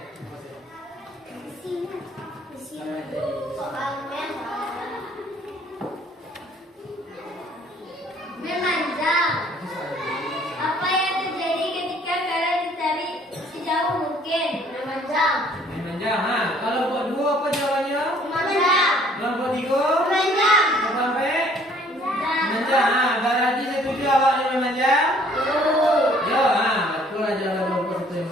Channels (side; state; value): both; normal; correlation 0.59